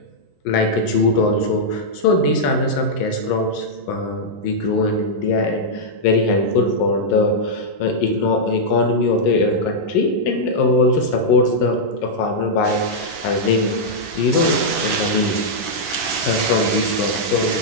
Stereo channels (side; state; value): right; late; 11 ms